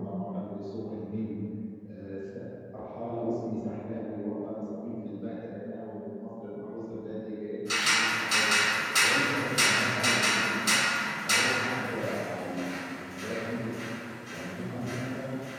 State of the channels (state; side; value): identical; both; correlation 1.00